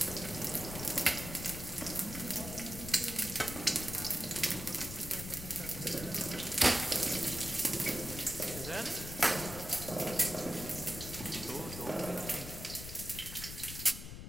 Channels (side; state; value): left; noise; rumble, 9 dB below the sound